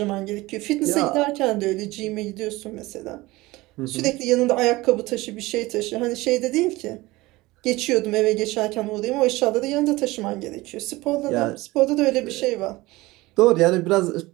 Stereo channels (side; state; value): left; quieter; 20.2 dB